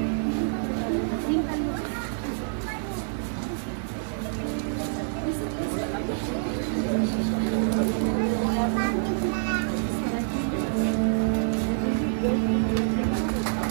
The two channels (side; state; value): left; silent; digital silence